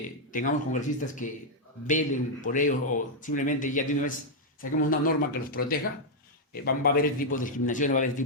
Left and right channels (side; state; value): both; normal; correlation -0.03